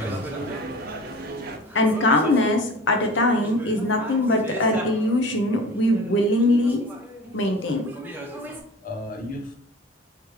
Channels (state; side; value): normal; both; correlation 0.39